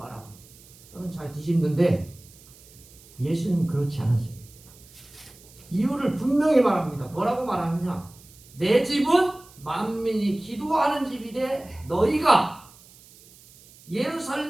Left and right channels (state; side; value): noise; right; hiss, 24 dB below the sound